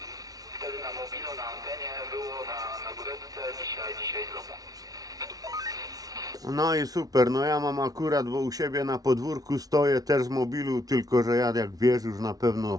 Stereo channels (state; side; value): late; left; 0.18 ms